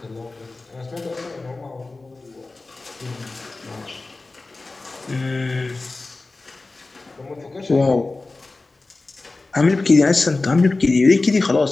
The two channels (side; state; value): right; quieter; 3.4 dB